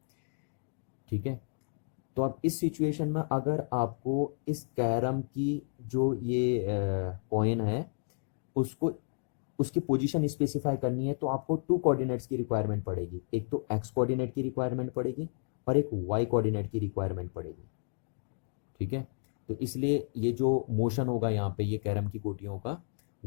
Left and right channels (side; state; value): right; silent; digital silence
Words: ठीक है। तो अब इस सिचुएशन में अगर आपको इस कैरम की जो ये कॉइन है उसको उसकी पोजीशन स्पेसिफाई करनी है, तो आपको टू कोऑर्डिनेट्स की रिक्वायरमेंट पड़ेगी, एक तो एक्स कोऑर्डिनेट की रिक्वायरमेंट पड़ेगी और एक वाई कोऑर्डिनेट की रिक्वायरमेंट पड़ेगी, ठीक है। तो इसलिए ये जो मोशन होगा यहाँ पे ये कैरम की गोटियों का,